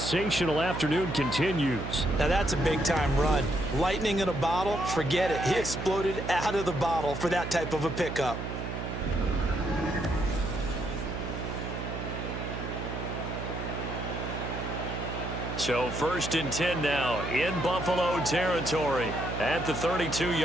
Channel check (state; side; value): noise; right; hum, 5 dB below the sound